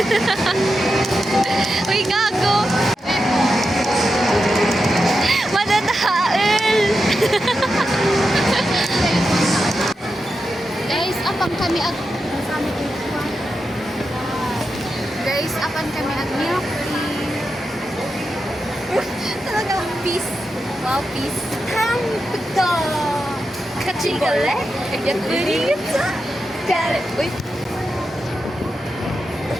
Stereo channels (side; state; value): both; normal; correlation 0.88